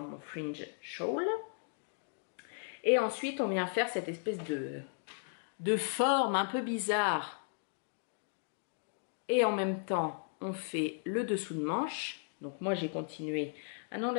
fringe shawl. Et ensuite on vient faire cette espèce de forme un peu bizarre. Et en même temps on fait le dessous de manche. Donc moi j'ai continué. Ah non,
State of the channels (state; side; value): silent; right; 54 dB below the other